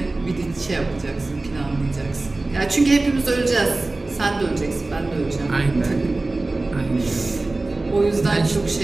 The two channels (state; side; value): quieter; left; 3.1 dB